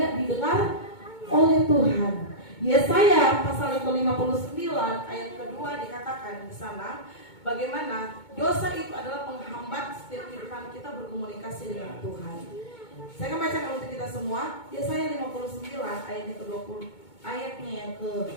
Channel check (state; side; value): late; right; 2.2 ms